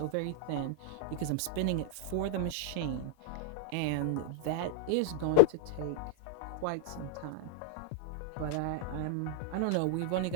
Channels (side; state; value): both; different; correlation -0.01